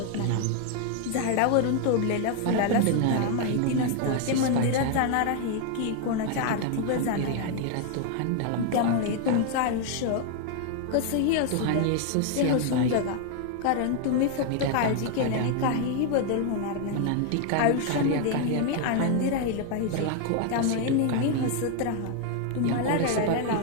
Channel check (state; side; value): different; both; correlation 0.00